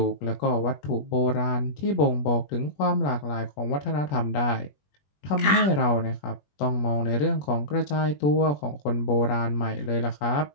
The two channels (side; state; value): right; late; 21 ms